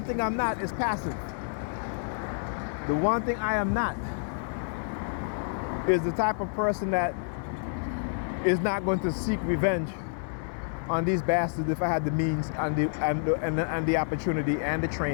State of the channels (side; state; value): right; silent; digital silence